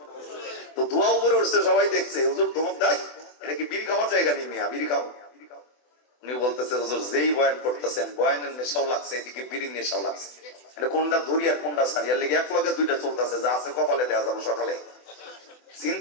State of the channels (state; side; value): late; right; 24 ms